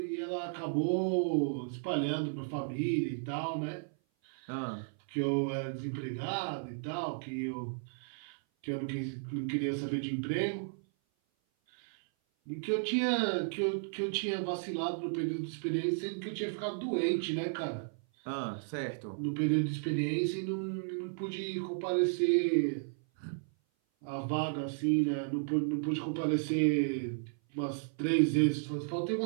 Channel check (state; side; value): silent; left; 55 dB below the other